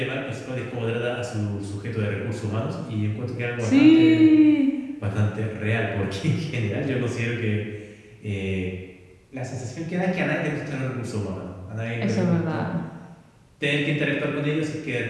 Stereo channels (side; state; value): both; identical; correlation 1.00